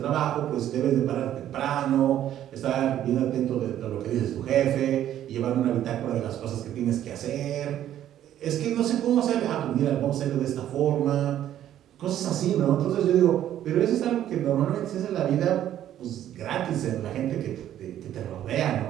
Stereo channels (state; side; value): quieter; left; 11.5 dB